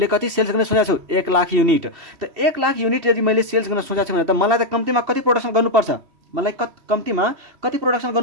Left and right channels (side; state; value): left; late; 2.7 ms